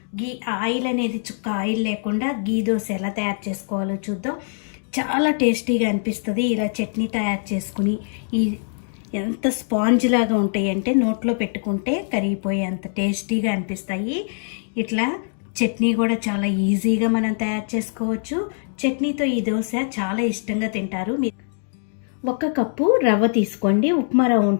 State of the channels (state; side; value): silent; right; digital silence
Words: గీ ఆయిల్ అనేది చుక్క ఆయిల్ లేకుండా గీ దోశ ఎలా తయారు చేసుకోవాలో చూద్దాం. చాలా టేస్టీగా అనిపిస్తుంది. ఇలా చట్నీ తయారు చేసుకుని ఎంత స్పాంజ్ లాగా ఉంటాయి అంటే నోట్లో పెట్టుకుంటే కరిగిపోయే అంత టేస్టీగా అనిపిస్తాయి. ఇట్లా చట్నీ కూడా చాలా ఈజీగా మనం తయారు చేసుకోవచ్చు. చట్నీతో ఈ దోశ చాలా ఇష్టంగా తింటారు. 1 కప్పు రవ్వ తీసుకోండి. ఉప్మా రవ్వ